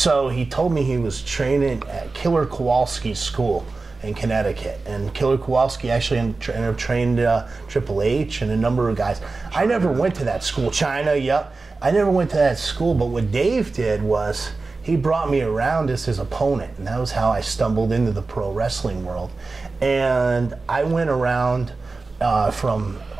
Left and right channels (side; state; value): left; quieter; 3.8 dB